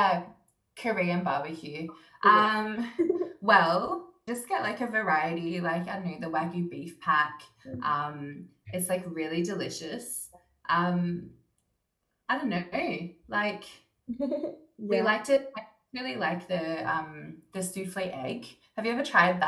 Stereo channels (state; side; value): identical; both; correlation 1.00